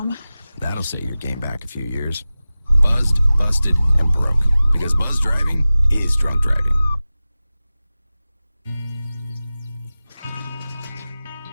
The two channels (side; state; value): both; inverted; correlation -0.96